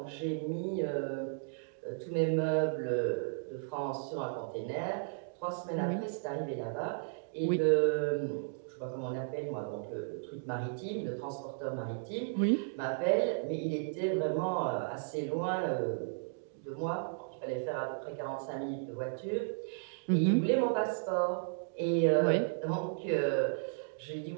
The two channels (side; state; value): left; silent; digital silence